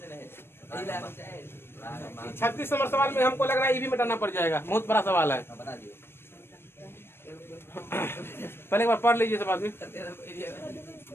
36 नंबर सवाल में हमको लग रहा है ये भी मिटाना पड़ जाएगा, बहुत बड़ा सवाल है। पहले एक बार पढ़ लीजिए सब आदमी।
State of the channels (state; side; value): late; right; 0.11 ms